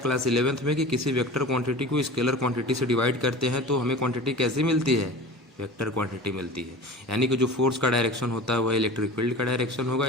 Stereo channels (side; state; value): both; normal; correlation 0.36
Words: 11th में कि किसी वेक्टर क्वांटिटी को स्केलर क्वांटिटी से डिवाइड करते हैं तो हमें क्वांटिटी कैसी मिलती है, वेक्टर क्वांटिटी मिलती है। यानी कि जो फोर्स का डायरेक्शन होता है वह इलेक्ट्रिक फील्ड का डायरेक्शन होगा,